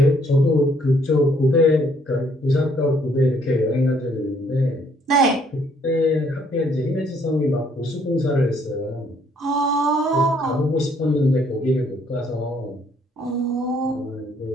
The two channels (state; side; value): normal; both; correlation 0.66